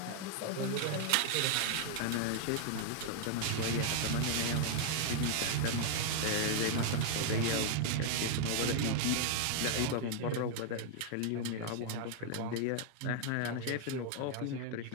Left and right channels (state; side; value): different; both; correlation 0.00